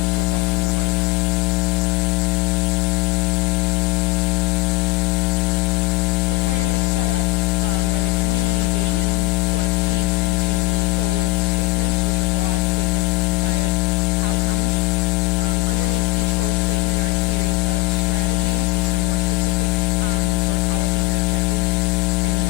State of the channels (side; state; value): right; quieter; 19.3 dB